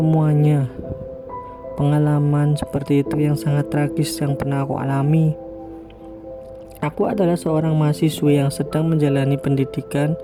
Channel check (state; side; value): identical; both; correlation 1.00